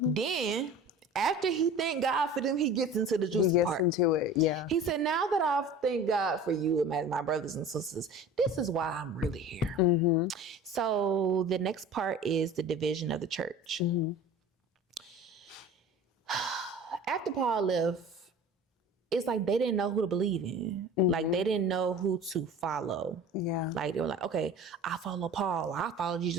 Then, after he thanked God for them, he gets into the juicy part. He gets into it, yeah. He said, now that I've thanked God for you, my brothers and sisters, this is why I'm really here. So the next part is the division of the church. After Paul left, it's like they didn't know who to believe in. Like they didn't know who to follow. Yeah. Like they were like, okay, I follow Paul. I follow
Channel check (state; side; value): normal; both; correlation 0.40